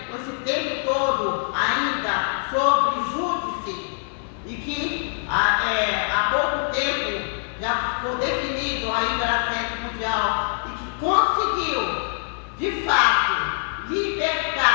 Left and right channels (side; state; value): right; silent; 63 dB below the other